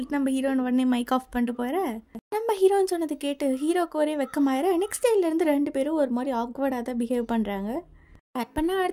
நம்ம ஹீரோயின் உடனே மைக் ஆஃப் பண்ணிட்டு போகிற, நம்ம ஹீரோன்னு சொன்னது கேட்டு ஹீரோக்கு ஒரே வெக்கமாயிர. நெக்ஸ்ட் டேலேருந்து 2 பேரும் ஒரு மாதிரி ஆக்வர்டாக தான் பிஹேவ் பண்ணுறாங்க. கட் பண்ணால்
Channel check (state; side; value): identical; both; correlation 1.00